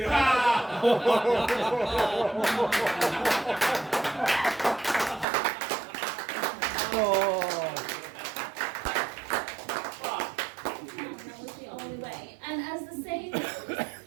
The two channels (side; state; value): left; drops out; at 5.2 s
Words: That was the only way. And as the saying goes,